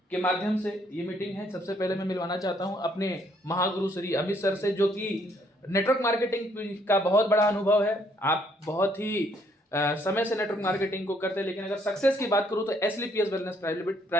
के माध्यम से ये मीटिंग है। सबसे पहले मैं मिलवाना चाहता हूँ अपने महागुरु श्री अमित सर से, जो कि नेटवर्क मार्केटिंग का बहुत बड़ा अनुभव है। आप बहुत ही समय से नेटवर्क मार्केटिंग को करते हैं, लेकिन अगर सक्सेस की बात करूं तो एसलीपीएस वेलनेस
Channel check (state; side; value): normal; both; correlation 0.68